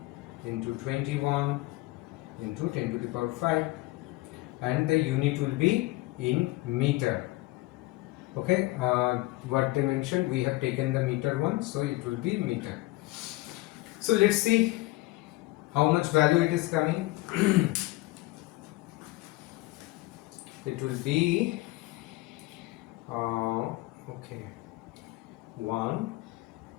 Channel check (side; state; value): right; quieter; 19.9 dB